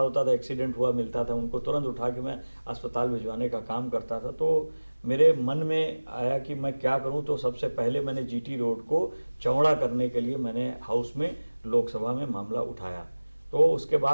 था, एक्सीडेंट हुआ मिलता था, उनको तुरंत उठा के मैं अस्पताल भिजवाने का काम करता था। तो मेरे मन में आया कि मैं क्या करूं, तो सबसे पहले मैंने जीटी रोड को चौड़ा करने के लिए मैंने हाउस में लोकसभा में मामला उठाया। तो उसके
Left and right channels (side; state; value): both; inverted; correlation -1.00